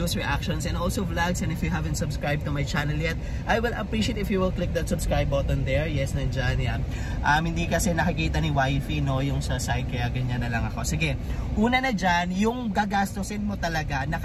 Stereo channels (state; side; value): identical; both; correlation 1.00